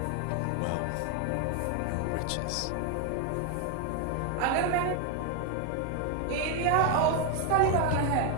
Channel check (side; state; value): both; different; correlation 0.01